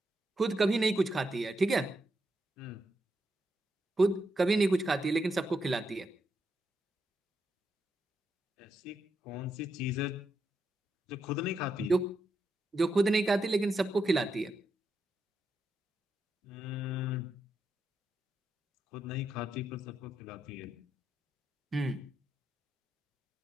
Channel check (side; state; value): both; normal; correlation 0.83